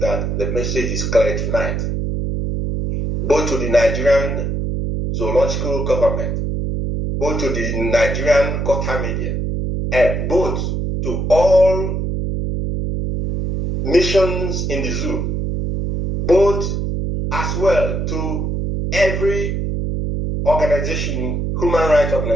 the message is clear tonight, both to the Nigerian zoological government, both to the Nigerian Gota media, and both to all missions in the zoo, both as well to every organization, human rights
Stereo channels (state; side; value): noise; right; hum, 1 dB below the sound